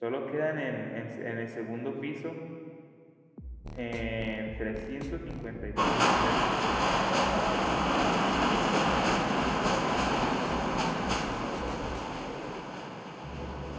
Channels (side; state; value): both; identical; correlation 1.00